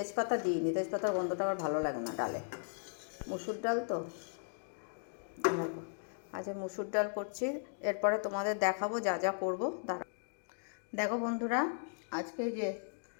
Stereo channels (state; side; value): silent; right; digital silence